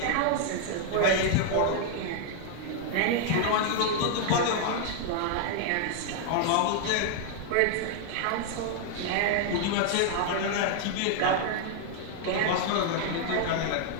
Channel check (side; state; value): both; different; correlation 0.00